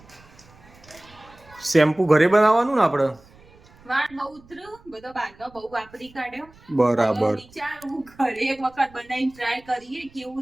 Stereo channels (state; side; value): noise; right; rumble, 26 dB below the sound